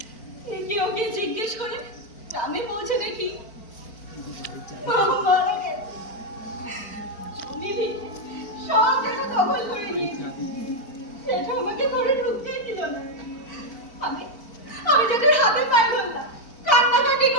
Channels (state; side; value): late; right; 4.5 ms